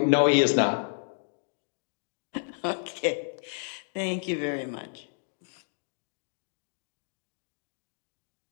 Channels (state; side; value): silent; right; 57 dB below the other